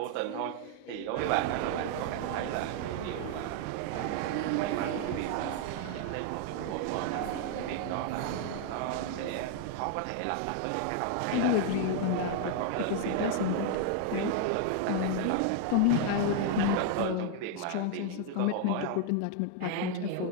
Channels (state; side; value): different; both; correlation 0.00